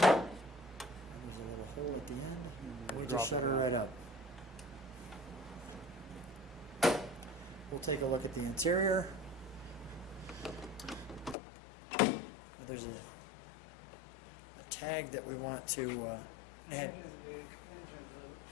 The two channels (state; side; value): drops out; right; at 11.4 s